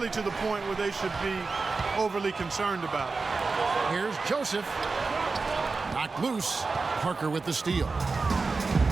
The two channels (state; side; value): quieter; left; 4.1 dB